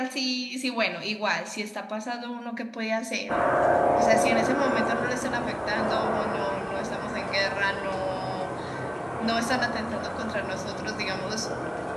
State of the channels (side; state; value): both; identical; correlation 1.00